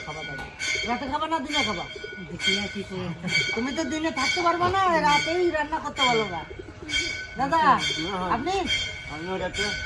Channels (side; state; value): both; identical; correlation 1.00